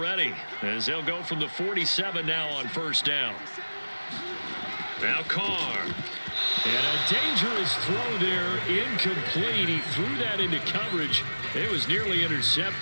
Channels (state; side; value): inverted; both; correlation -1.00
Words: as they'll go from the 47 now on first down. Now Carr. And a dangerous throw there, incomplete. He threw that into coverage. It was nearly